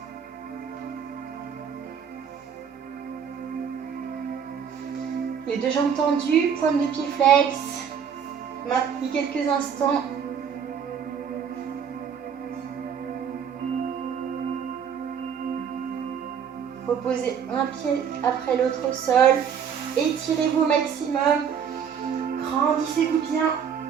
Les deux jambes tendues, pointe de pied flex. Maintenez quelques instants. Reposez un pied après l'autre au sol. Étirez-vous au maximum. Grandissez-vous bien.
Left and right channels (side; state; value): left; quieter; 7.6 dB